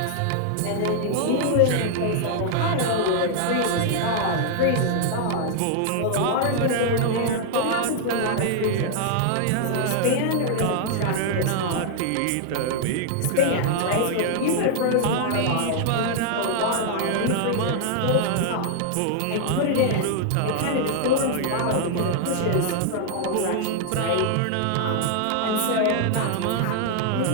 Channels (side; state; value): both; different; correlation 0.00